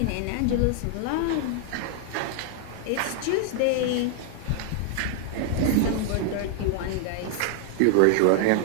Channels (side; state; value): both; different; correlation 0.00